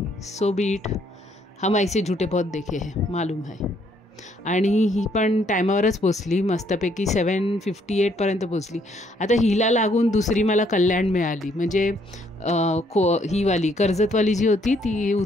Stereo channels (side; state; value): both; normal; correlation 0.68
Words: So B it. हम ऐसे झूठे बहुत देखे हैं, मालूम है. आणि ही पण टायमावरच पोचली, मस्तपैकी 7:58पर्यंत पोचली. आता हिला लागून दुसरी मला कल्याण मिळाली, म्हणजे हीवाली कर्जतवाली जी होती ती